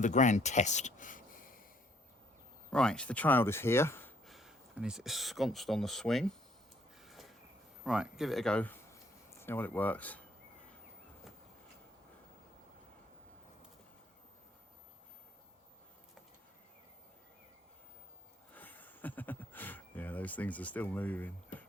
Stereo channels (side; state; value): both; normal; correlation 0.66